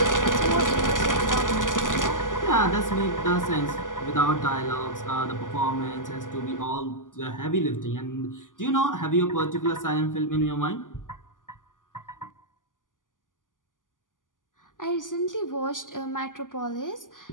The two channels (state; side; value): late; right; 0.88 ms